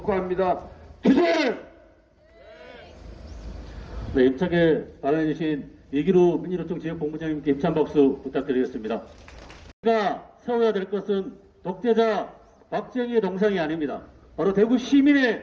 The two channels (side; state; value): both; identical; correlation 1.00